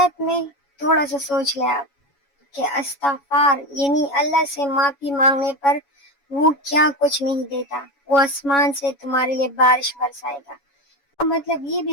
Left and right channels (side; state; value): right; late; 7.1 ms